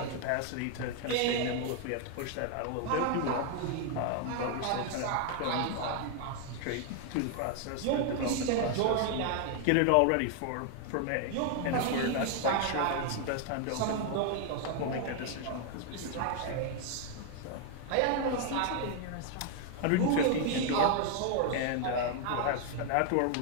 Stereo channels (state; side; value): different; both; correlation 0.00